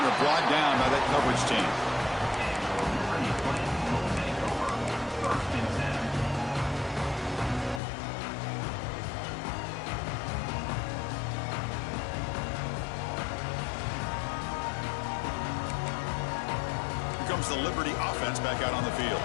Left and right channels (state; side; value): drops out; right; at 7.8 s